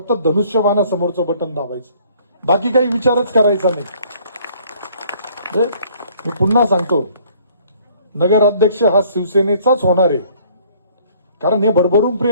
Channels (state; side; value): inverted; both; correlation -0.58